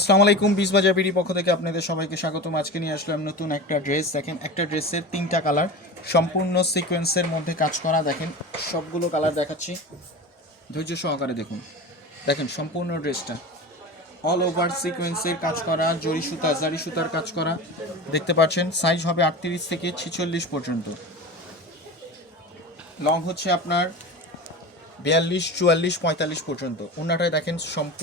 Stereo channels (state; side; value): normal; both; correlation 0.30